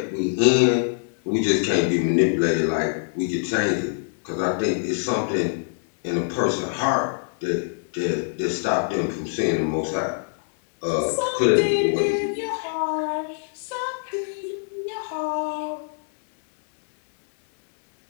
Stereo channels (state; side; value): silent; right; digital silence